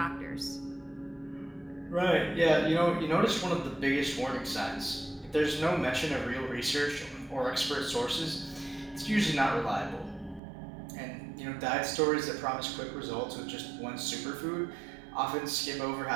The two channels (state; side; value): drops out; left; at 10.4 s